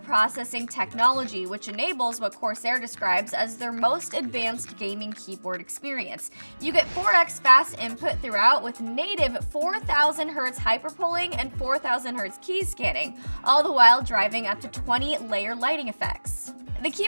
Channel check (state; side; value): inverted; both; correlation -1.00